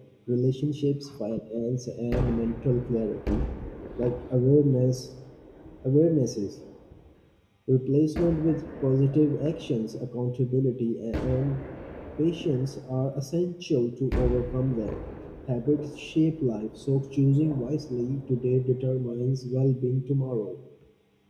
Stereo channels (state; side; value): identical; both; correlation 1.00